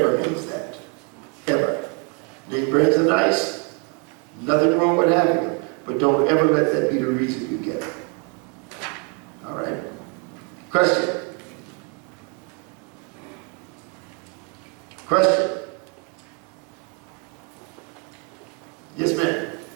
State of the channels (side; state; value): left; quieter; 35.6 dB